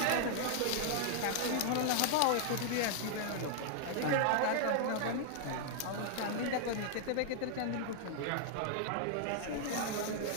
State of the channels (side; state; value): both; different; correlation 0.00